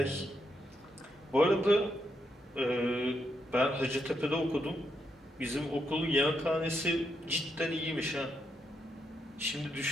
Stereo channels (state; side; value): normal; both; correlation 0.81